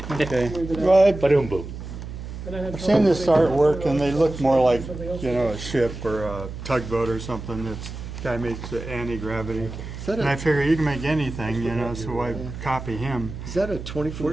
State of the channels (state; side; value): noise; right; hum, 10 dB below the sound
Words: Okay. Well, Ba-doom boom. I've seen this artwork, and they look more like, you know, a ship or a tugboat or something. This guy makes the anti-gravity. And I figure you can make anything, you know, so I copy him. Is that a 24